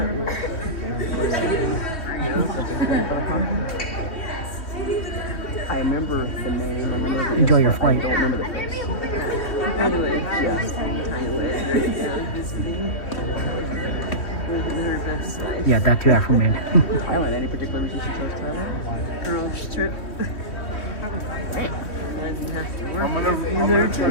Enjoy your flight. Yeah, that too, Afro-Man. Any particular reason she chose Thailand? Girls trip. I'm gonna try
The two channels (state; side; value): late; right; 3.1 ms